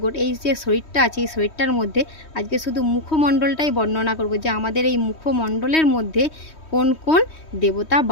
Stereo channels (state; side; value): late; right; 3.1 ms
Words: যে শরীরটা আছে, এই শরীরটার মধ্যে আজকে শুধু মুখমণ্ডলটাই বর্ণনা করব যে আমাদের এই মুখমণ্ডলের মধ্যে কোন কোন দেবতা